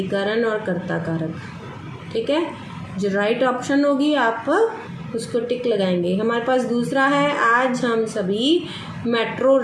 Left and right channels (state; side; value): identical; both; correlation 1.00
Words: और कर्ता कारक। ठीक है, जो राइट ऑप्शन होगी आप उसको टिक लगाएंगे। हमारे पास दूसरा है, आज हम सभी मेट्रो